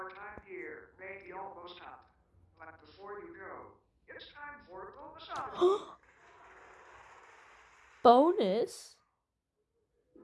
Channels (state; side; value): identical; both; correlation 1.00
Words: time here may be almost up. But before you go, it's time for a bonus oddity. Bonus?